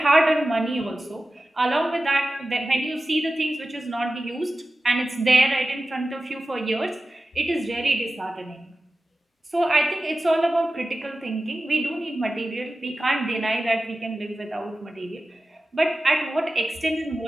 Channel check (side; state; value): both; normal; correlation 0.94